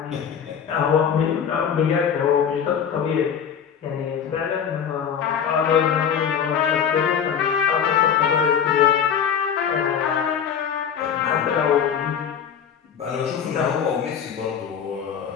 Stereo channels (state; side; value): quieter; right; 7.9 dB